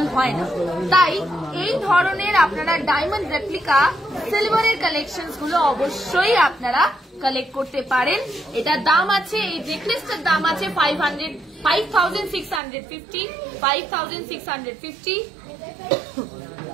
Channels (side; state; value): left; drops out; at 12.6 s